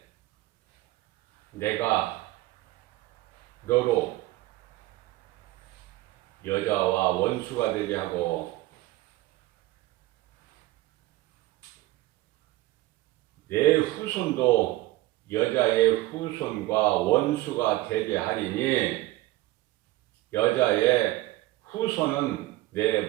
내가 너로 여자와 원수가 되게 하고 내 후손도 여자의 후손과 원수가 되게 하리니 여자의 후손은 내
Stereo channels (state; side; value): quieter; left; 17.6 dB